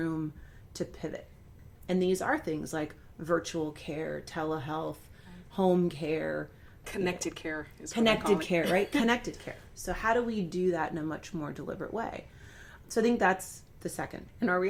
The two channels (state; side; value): identical; both; correlation 1.00